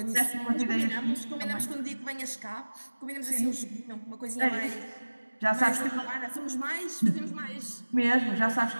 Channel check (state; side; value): inverted; both; correlation -1.00